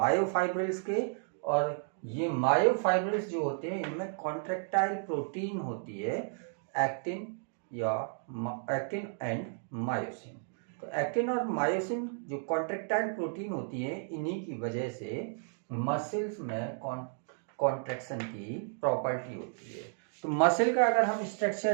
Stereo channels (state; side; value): silent; left; 56 dB below the other